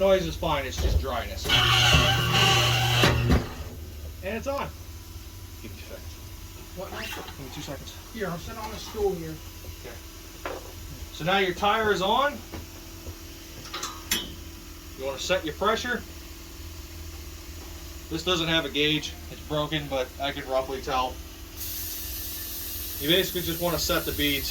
is fine, it's just dryness. And it's on. Give me 2 seconds. What now? Give me 2 seconds. Here, I'm sitting on a stool here. Okay. So now your tire is on. You want to set your pressure. This doesn't have a gauge. It's broken, but I can roughly tell. You basically just want to set the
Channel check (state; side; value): identical; both; correlation 1.00